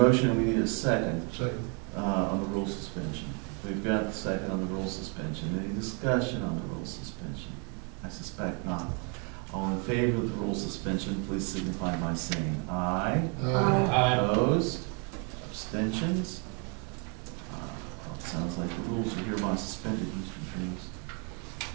we need a second, Second. on the rule suspension. We've got the second on the rule suspension. Any discussion on the rule suspension? I suspect not. All in favor of the rule suspension, please signify by saying aye. Aye. Opposed? Abstentions? It sounds like the rules are hereby suspended, Mr. Drews.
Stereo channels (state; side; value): quieter; left; 36.7 dB